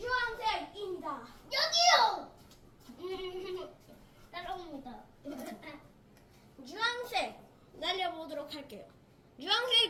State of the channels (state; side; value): identical; both; correlation 1.00